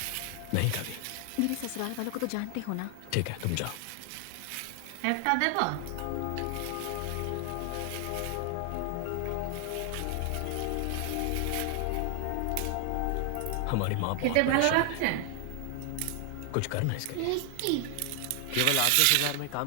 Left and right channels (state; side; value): different; both; correlation 0.00